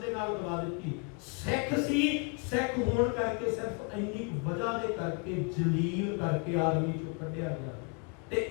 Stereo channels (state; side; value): quieter; right; 34.6 dB